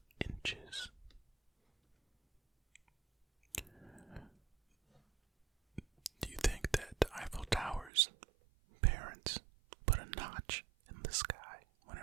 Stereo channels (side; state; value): left; drops out; at 7.9 s